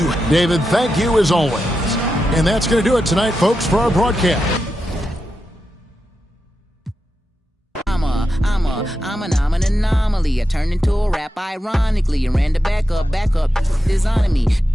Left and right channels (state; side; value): normal; both; correlation 0.88